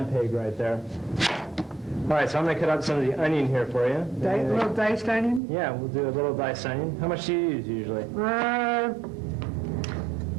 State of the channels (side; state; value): left; drops out; at 5.4 s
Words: right there. All right, so I'm going to cut out some of the onion here for you. A little diced onion? Yeah, we'll do a little diced onion. How much do you use usually? About